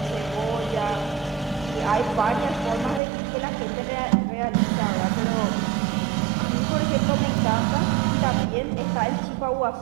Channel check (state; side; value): drops out; left; at 3.0 s